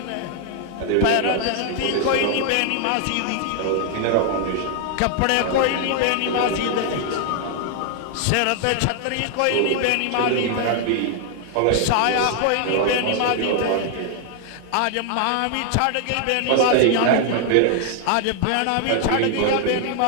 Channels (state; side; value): different; both; correlation 0.00